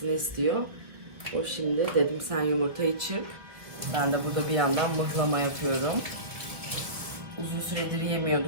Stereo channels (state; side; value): late; left; 1.2 ms